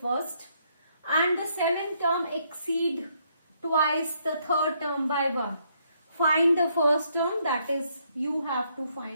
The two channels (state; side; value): inverted; both; correlation -0.72